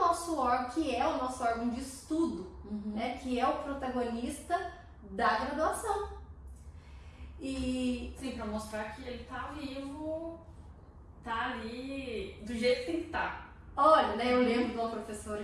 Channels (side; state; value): both; identical; correlation 1.00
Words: órgão de estudo, né, que é o protagonista da graduação. E sim, para mostrar que ele tá vivo, tá ali do jeito que tem que estar. Olha, né, eu lembro de uma professora